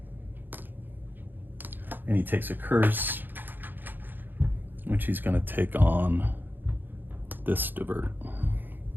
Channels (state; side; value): late; left; 0.092 ms